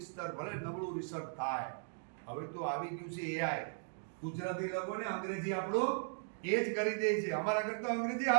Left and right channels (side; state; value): left; silent; digital silence